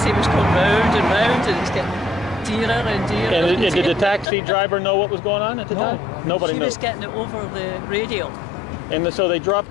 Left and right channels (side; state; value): right; drops out; at 4.2 s